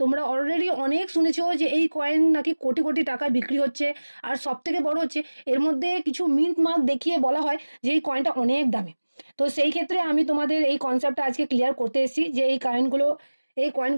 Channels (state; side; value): inverted; both; correlation -1.00